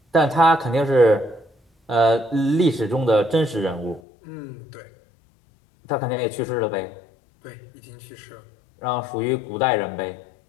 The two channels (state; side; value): drops out; right; at 4.0 s